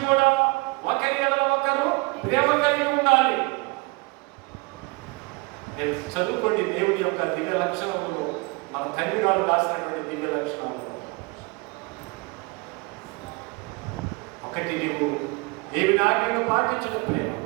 కూడా ఒకరి ఎడల ఒకరు ప్రేమ కలిగి ఉండాలి. చదువుకోండి దేవుడి యొక్క దివ్య లక్షణములు, మన తండ్రి గారు రాసినటువంటి దివ్య లక్షణాలు. ఒకటి నీవు దేవుని ఆజ్ఞను పాటించిన ప్రేమ,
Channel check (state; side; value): quieter; left; 27.6 dB